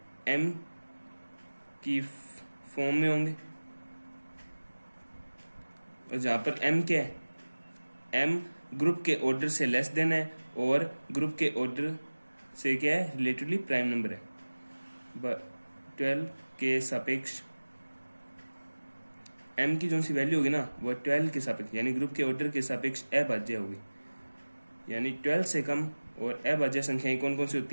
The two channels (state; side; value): inverted; both; correlation -1.00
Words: एम की फॉर्म में होंगे, और जहां पर एम क्या है, एम ग्रुप के ऑर्डर से लेस देन है और ग्रुप के ऑर्डर से क्या है, रिलेटिवली प्राइम नंबर है। 12 के सापेक्ष एम की जो सी वैल्यू होगी ना वो 12 के सापेक्ष यानी ग्रुप के ऑर्डर के सापेक्ष अभाज्य होगी, यानी 12 से कम और अभाज्य संख्याएं कौन कौन सी